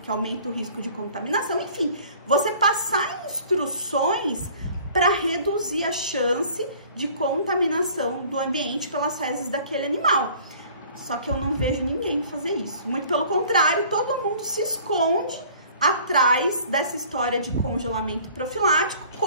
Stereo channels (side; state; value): both; inverted; correlation -0.51